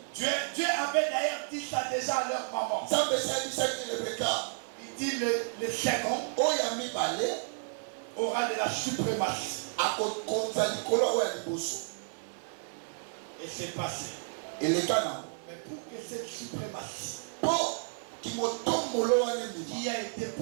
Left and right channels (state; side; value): silent; left; 57 dB below the other